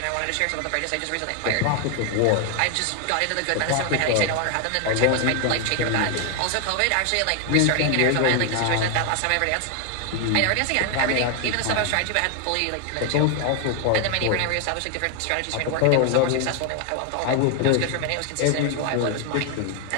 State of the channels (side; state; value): both; different; correlation 0.00